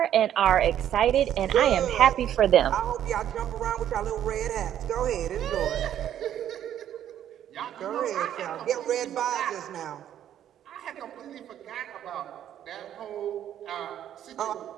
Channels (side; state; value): left; quieter; 10.7 dB